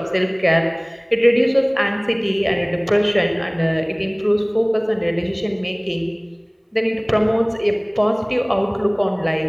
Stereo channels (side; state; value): both; identical; correlation 1.00